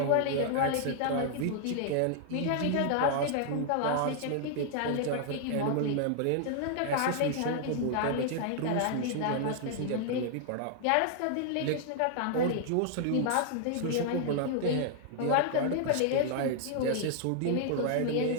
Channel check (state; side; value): different; both; correlation -0.01